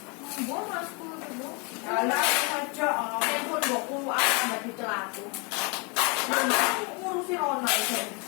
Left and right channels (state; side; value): quieter; right; 31.8 dB